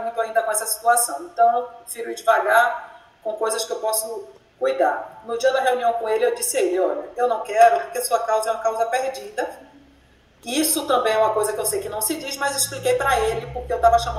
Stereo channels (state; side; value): identical; both; correlation 1.00